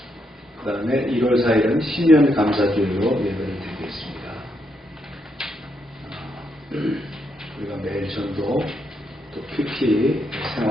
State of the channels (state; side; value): normal; both; correlation 0.79